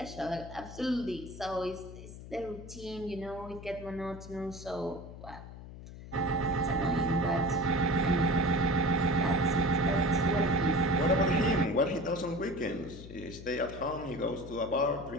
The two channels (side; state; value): left; noise; hum, 14 dB below the sound